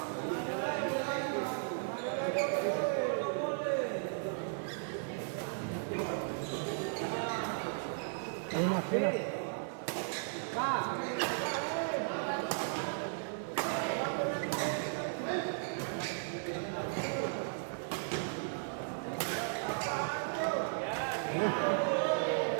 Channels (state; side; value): silent; left; digital silence